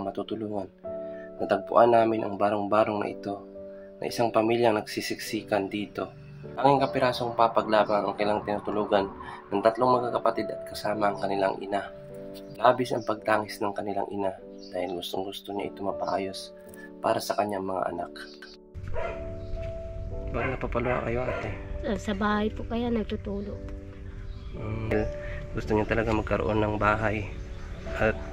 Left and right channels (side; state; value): both; identical; correlation 1.00